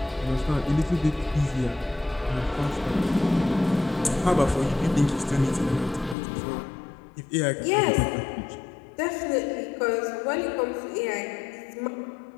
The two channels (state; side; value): drops out; right; at 6.2 s